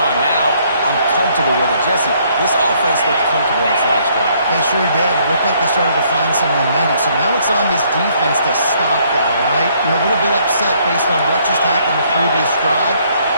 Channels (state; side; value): inverted; both; correlation -0.66